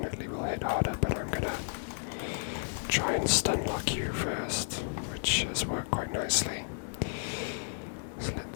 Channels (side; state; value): right; silent; 56 dB below the other